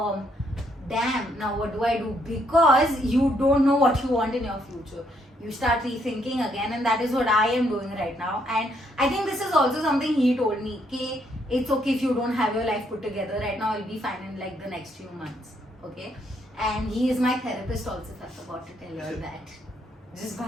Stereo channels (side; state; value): both; normal; correlation 0.72